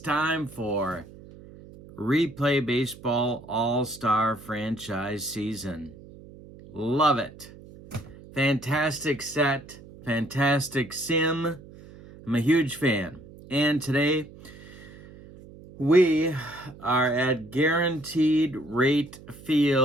for Replay Baseball All-Star Franchise Season. Love it. Fantastic set, fantastic sim. I'm a huge fan. And today, we are at Guaranteed Rate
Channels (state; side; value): noise; right; hum, 19 dB below the sound